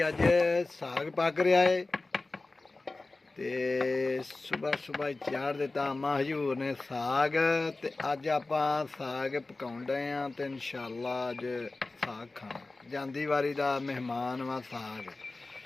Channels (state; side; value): quieter; right; 3.3 dB